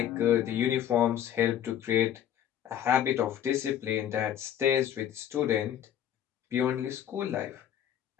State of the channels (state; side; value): quieter; right; 10.3 dB